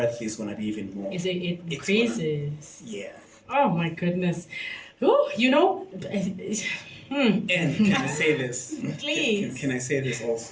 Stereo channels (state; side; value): identical; both; correlation 1.00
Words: is going to be even more. It increases. Yeah. Oh my goodness. Oh, And can I say this? Please. Can I say this